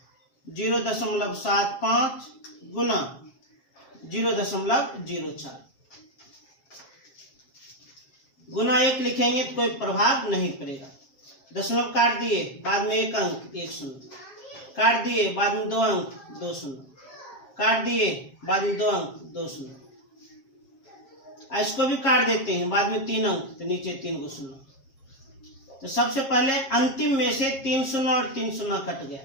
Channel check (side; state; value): right; late; 7.5 ms